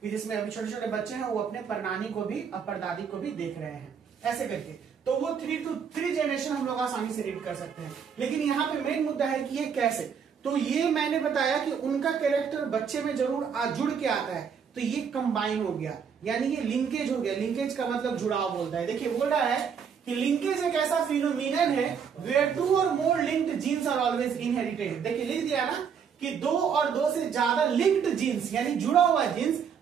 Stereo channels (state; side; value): quieter; left; 7.0 dB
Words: कि जिसमें अभी छोटे छोटे बच्चे हैं वो अपने परनानी को भी और परदादी को भी देख रहे हैं, ऐसे करके। तो वो 3 to 3 जनरेशन हम लोग आसानी से रीड कर सकते हैं। लेकिन यहाँ पे मेन मुद्दा है कि ये कैसे। तो ये मैंने बताया कि उनका कैरेक्टर बच्चे में जरूर जुड़ के आता है, तो ये कंबाइन हो गया, यानी ये लिंकेज हो गया। लिंकेज का मतलब जुड़ाव बोलता है। देखिए बोल रहा है कि लिंकेज एक ऐसा फिनोमिनन है where 2 or more linked genes are always inherited। देखिए लिख दिया ना कि 2 और 2 से ज्यादा लिंक्ड जीन्स यानी जुड़ा हुआ जीन्स